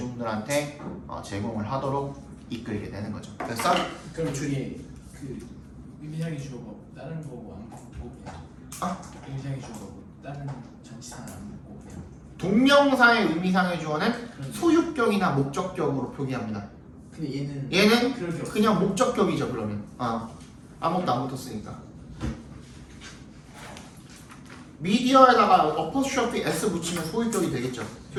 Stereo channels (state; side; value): identical; both; correlation 1.00